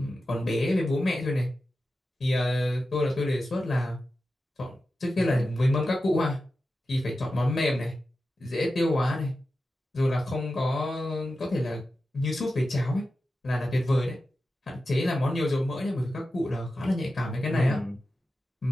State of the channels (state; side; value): normal; both; correlation 0.92